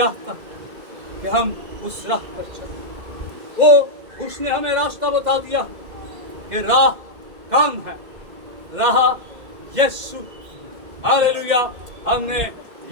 है कि हम उस राह पर चलें। उसने हमें रास्ता बता दिया कि राह कौन है? राह यीशु। हालेलुया। हमने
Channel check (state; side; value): late; left; 2.1 ms